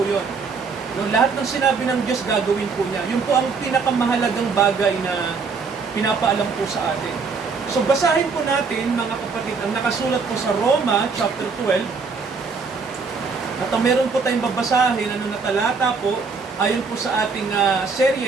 yun. Lahat ng sinabi ng Diyos, gagawin po niya. Yun po ang pinakamahalagang bagay na pinapaalam po sa atin. So basahin po natin, mga kapatid, ang nakasulat po sa Roma chapter 12. At meron po tayong babasahin, na talata po, ayon po sa ating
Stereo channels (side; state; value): left; quieter; 4.9 dB